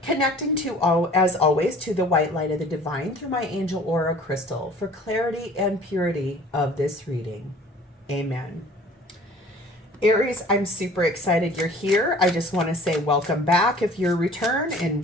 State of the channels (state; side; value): normal; both; correlation 0.49